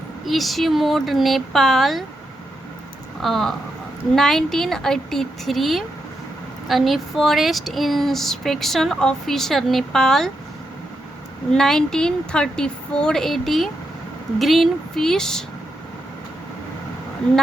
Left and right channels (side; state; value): both; normal; correlation 0.84